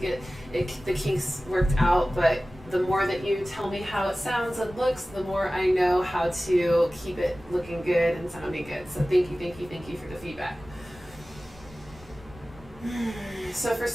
the kinks worked out, but the more that you tell me how it sounds and looks, the more I know how to keep it looking good and sounding good. So thank you for the feedback. So for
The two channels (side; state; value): both; normal; correlation 0.97